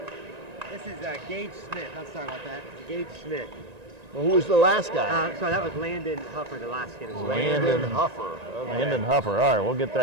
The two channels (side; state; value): left; late; 1.9 ms